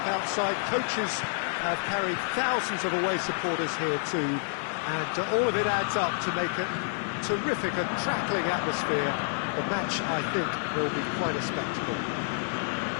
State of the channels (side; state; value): right; silent; digital silence